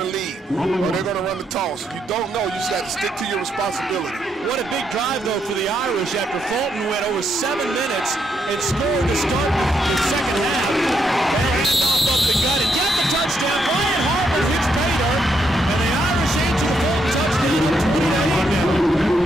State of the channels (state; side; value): normal; both; correlation 0.77